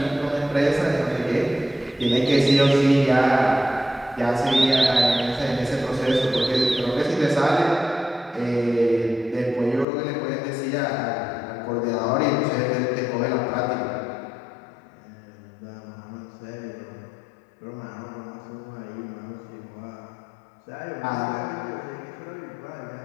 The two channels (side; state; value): right; drops out; at 9.9 s